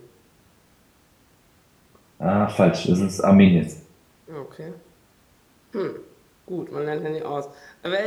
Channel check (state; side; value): identical; both; correlation 1.00